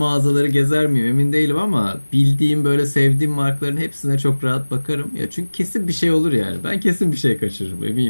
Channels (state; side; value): inverted; both; correlation -1.00